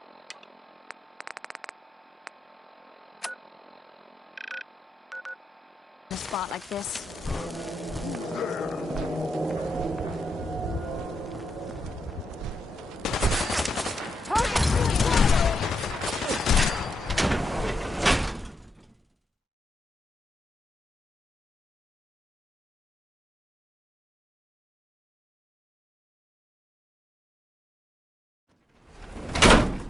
In a spot like this.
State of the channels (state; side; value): normal; both; correlation 0.85